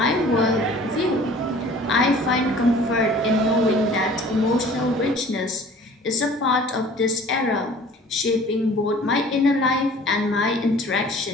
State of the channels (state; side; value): normal; both; correlation 0.48